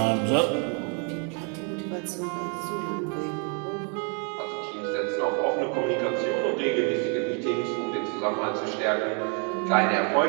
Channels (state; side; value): quieter; left; 39.0 dB